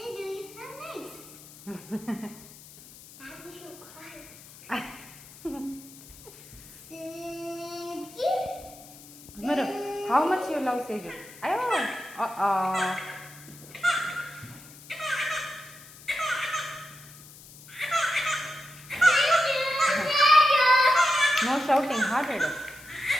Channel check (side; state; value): left; noise; hiss, 19 dB below the sound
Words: Mero, how much you love Seju? Ayo, no shouting, hearted.